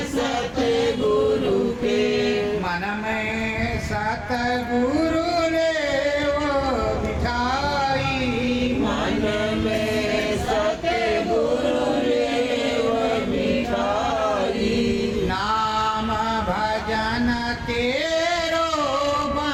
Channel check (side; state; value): both; identical; correlation 1.00